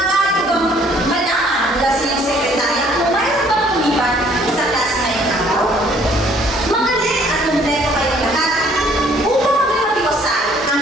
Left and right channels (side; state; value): both; normal; correlation 0.60